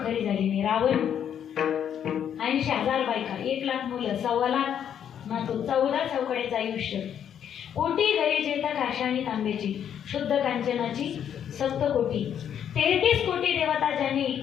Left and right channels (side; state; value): right; quieter; 9.1 dB